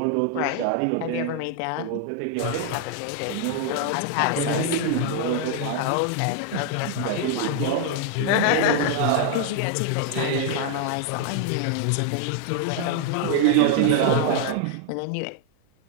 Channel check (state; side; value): different; both; correlation 0.00